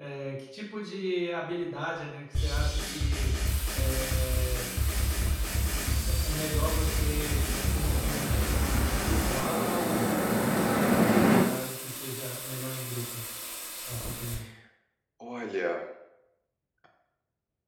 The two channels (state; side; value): identical; both; correlation 1.00